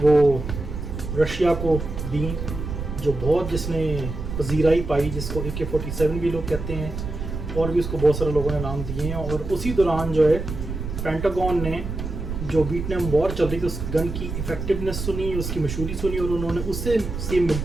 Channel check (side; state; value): right; noise; rumble, 6 dB below the sound